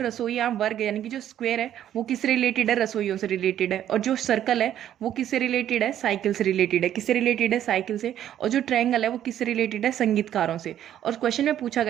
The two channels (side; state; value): left; quieter; 11.1 dB